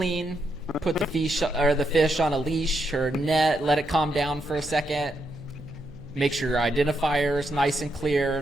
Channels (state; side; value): noise; right; hum, 22 dB below the sound